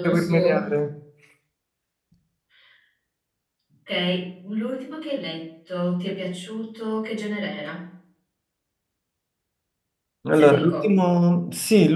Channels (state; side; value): identical; both; correlation 1.00